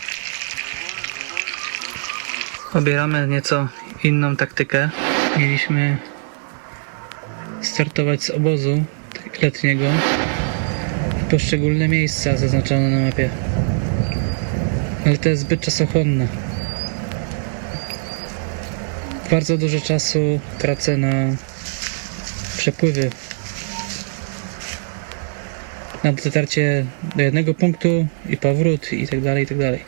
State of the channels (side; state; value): left; silent; digital silence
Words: Obieramy nieco inną taktykę. Mieliśmy startować z obozu letniego w poszczególne miejsca zaznaczone na mapie, ale to jest zbyt czasochłonne. Bardzo dużo czasu tracę na przepływy, na dotarcie do jednego punktu i powrót i tak dalej, i tak dalej.